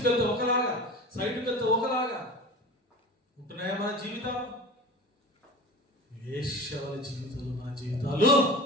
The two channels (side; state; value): both; normal; correlation 0.35